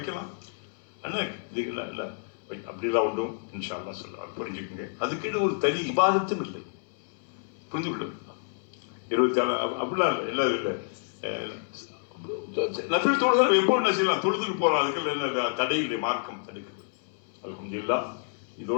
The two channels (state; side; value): silent; right; 59 dB below the other